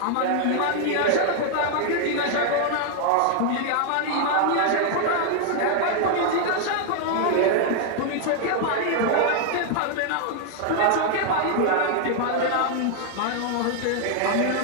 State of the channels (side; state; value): both; different; correlation 0.00